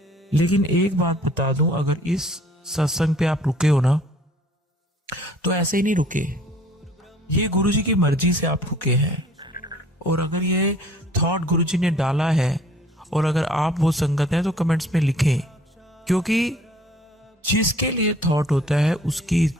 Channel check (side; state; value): both; normal; correlation 0.55